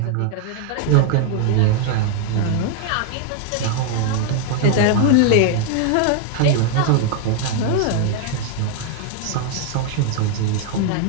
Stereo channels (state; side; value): different; both; correlation 0.00